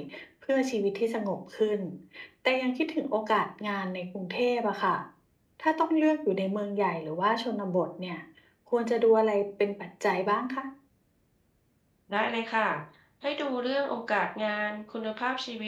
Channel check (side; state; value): both; identical; correlation 1.00